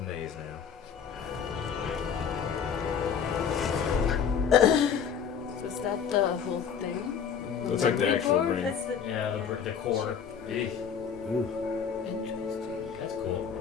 maze now. Is that the whole thing? Looks like the actual brain. That's the Yeah, the core. Eesh. Interesting. That's cool.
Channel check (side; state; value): right; quieter; 7.2 dB